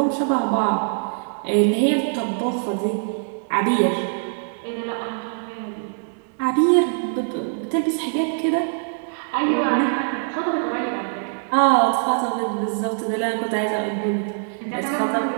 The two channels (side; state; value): left; silent; digital silence